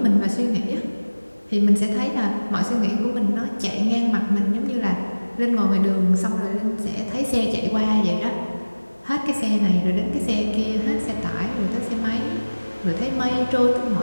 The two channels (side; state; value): both; inverted; correlation -1.00